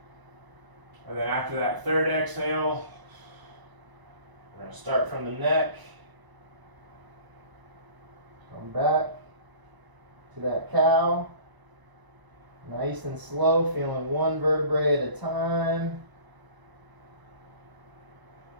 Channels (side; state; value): left; late; 1.0 ms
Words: And then after that 3rd exhale, we're going to start from the neck. Come back to that cow. Nice and slow, feeling 1 vertebrae at a time.